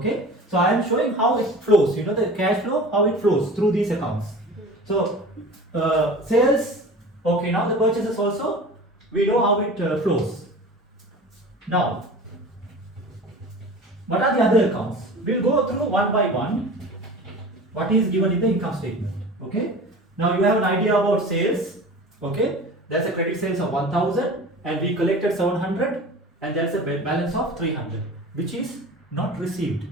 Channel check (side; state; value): both; normal; correlation 0.38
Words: So I am showing how it flows. You know the cash flow, how it flows through these accounts. So sales. Okay. Now the purchases also, we know how it flows. Now, what are the other accounts? We'll go through one by one. What is given in the income statement? Okay. Now you have an idea about sales. Okay. That's a credit sales of 1000 and we collected 700 and there's a balance of 300 which is not received.